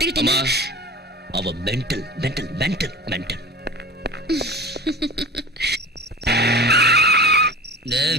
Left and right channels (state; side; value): normal; both; correlation 0.34